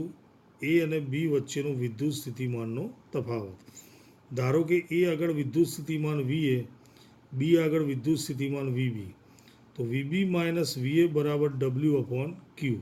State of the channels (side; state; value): both; identical; correlation 1.00